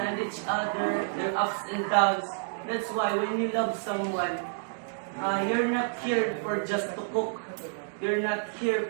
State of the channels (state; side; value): silent; left; digital silence